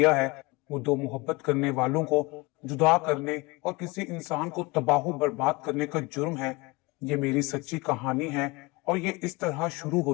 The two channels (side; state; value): right; quieter; 24.2 dB